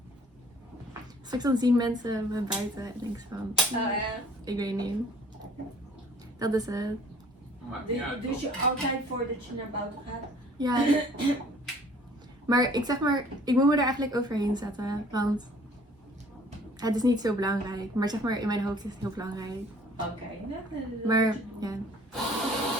Straks dan zien mensen me buiten en denk ik van, ik weet niet. Dat is het. Dus je altijd voordat je naar buiten gaat? Ja. Maar ik moet me er eigenlijk overheen zetten. Want het is niet zo belangrijk. Maar zeg maar, in mijn hoofd is het heel belangrijk. Oké. Maar ja.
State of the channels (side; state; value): both; normal; correlation 0.54